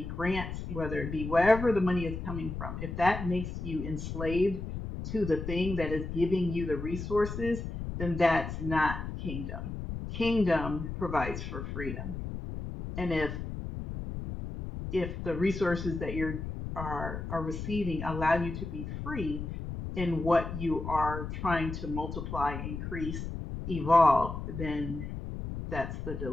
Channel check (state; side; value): noise; left; rumble, 6 dB below the sound